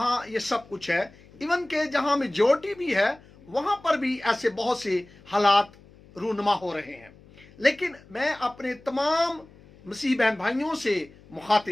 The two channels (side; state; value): left; noise; hum, 24 dB below the sound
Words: ये सब कुछ है। इवन के जहां मेजॉरिटी भी है वहां पर भी ऐसे बहुत से हालात रूनुमा हो रहे हैं। लेकिन मैं अपने तमाम मसीह बहन भाइयों से